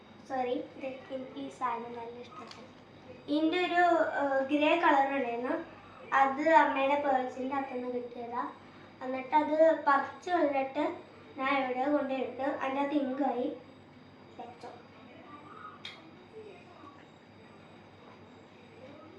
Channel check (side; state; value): both; identical; correlation 1.00